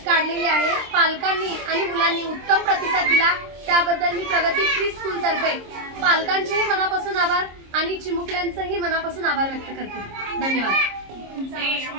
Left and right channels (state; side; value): late; left; 26 ms